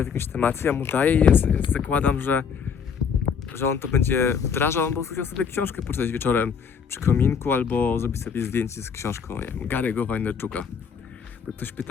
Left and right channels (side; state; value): right; quieter; 6.6 dB